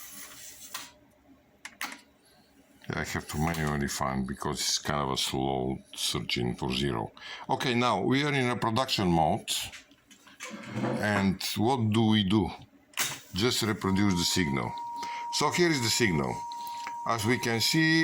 I have to manually find because it's kind of a slow searching for 0. Okay, now we are in a production mode. And what do? Just reproduce the signal. So here is the signal. As we can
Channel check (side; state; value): both; identical; correlation 1.00